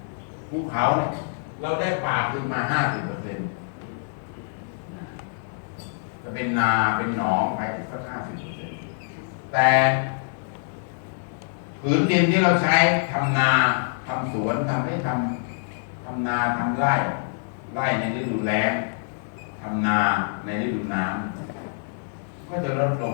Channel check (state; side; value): silent; right; digital silence